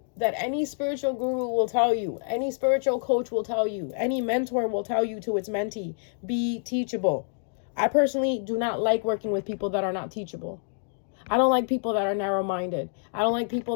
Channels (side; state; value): right; silent; digital silence